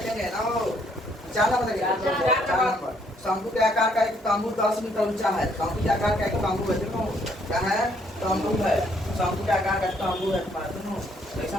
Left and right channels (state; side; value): normal; both; correlation 0.68